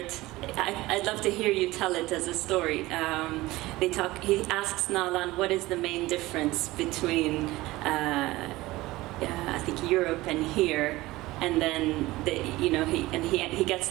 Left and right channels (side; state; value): left; quieter; 18.8 dB